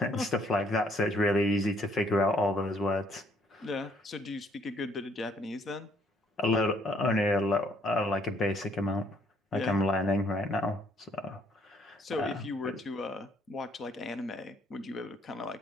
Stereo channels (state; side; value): normal; both; correlation 0.66